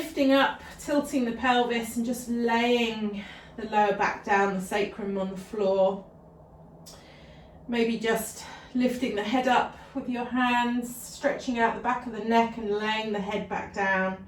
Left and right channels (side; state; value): both; identical; correlation 1.00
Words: up, tilting the pelvis and just laying the lower back down, the sacrum on the floor. Maybe just lifting the head up with your hands, stretching out the back of the neck and laying the head back down.